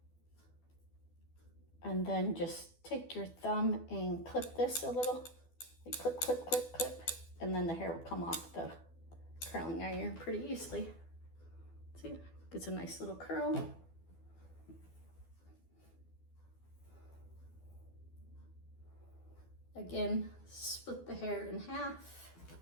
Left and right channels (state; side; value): late; right; 12 ms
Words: And then just take your thumb and clip this a little. Like clip, clip, clip, clip. And then the hair will come off the curling iron pretty easily. See, gets a nice little curl. Again, split the hair in half.